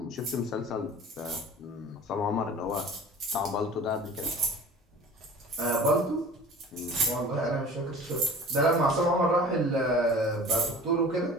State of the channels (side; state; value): both; normal; correlation 0.42